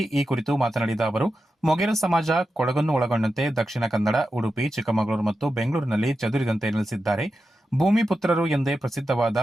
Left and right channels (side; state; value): both; normal; correlation 0.90